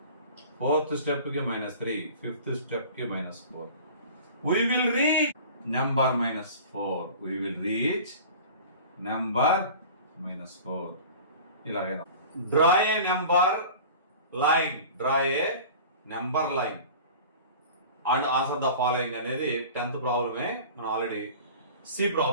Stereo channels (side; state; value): both; inverted; correlation -0.40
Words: ఫోర్త్ స్టెప్ కి -3, ఫిఫ్త్ స్టెప్ కి -4. we will reach number -4. we will reach number -4. ఇలాగే draw a number line, and answer the following అనేది 10th ప్రాబ్లమే. మనం ఆల్రెడీ సి